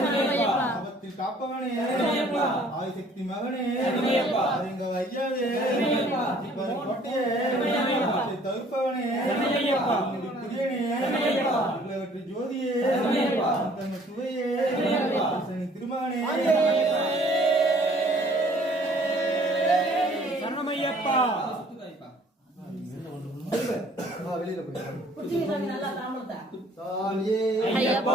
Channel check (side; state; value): both; normal; correlation 0.57